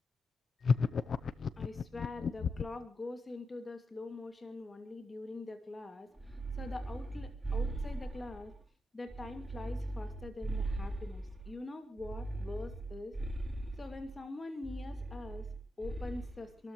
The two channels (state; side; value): normal; both; correlation 0.87